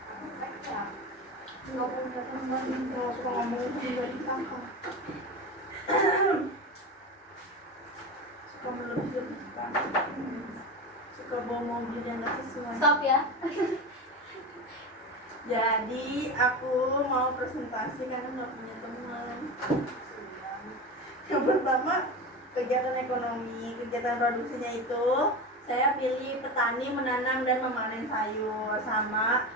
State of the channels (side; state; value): both; normal; correlation 0.24